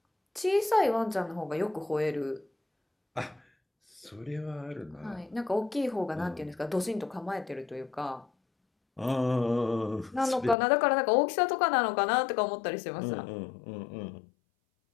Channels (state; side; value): drops out; right; at 10.6 s